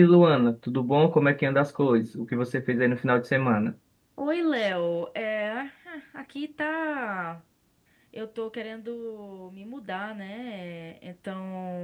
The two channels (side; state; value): both; identical; correlation 1.00